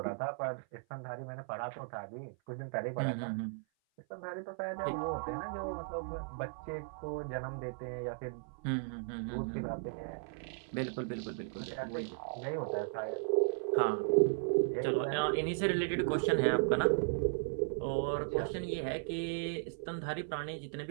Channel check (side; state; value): left; silent; 54 dB below the other